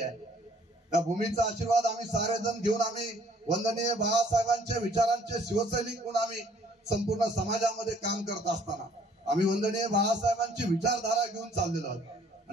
त्या भूमीचा आशीर्वाद आम्ही सारेजण घेऊन आम्ही वंदनीय बाळासाहेबांच्या विचारांचे शिवसैनिक म्हणून आम्ही संपूर्ण समाजामध्ये काम करत असताना आम्ही वंदनीय बाळासाहेबांची विचारधारा घेऊन चाललेलो आहोत।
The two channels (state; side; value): normal; both; correlation 0.60